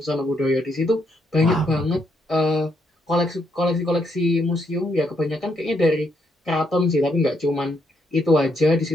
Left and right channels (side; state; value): both; normal; correlation 0.76